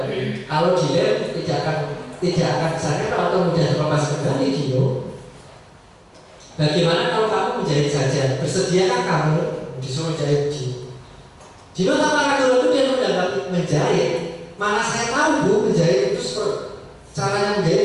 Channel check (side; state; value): both; identical; correlation 1.00